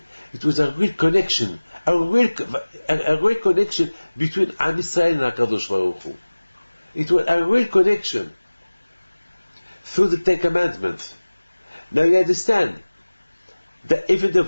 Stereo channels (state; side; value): inverted; both; correlation -1.00